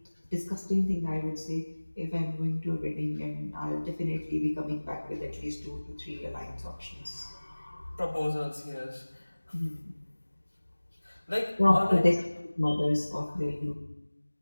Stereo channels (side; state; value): both; inverted; correlation -1.00